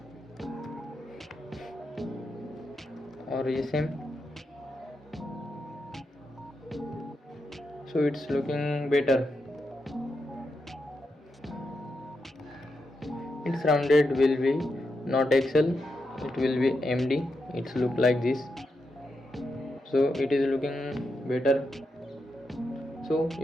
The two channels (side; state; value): both; normal; correlation 0.85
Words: or SM. So it's looking better. Its rounded will be not XL, it will be MD. It's look like this. So it is looking better. So